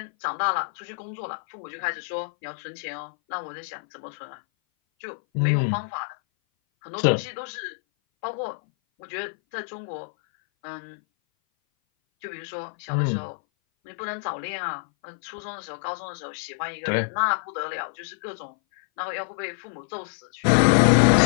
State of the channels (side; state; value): right; silent; 57 dB below the other